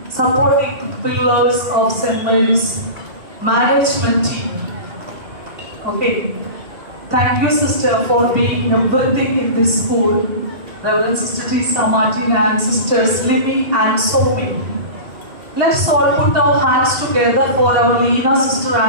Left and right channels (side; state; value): left; late; 2.8 ms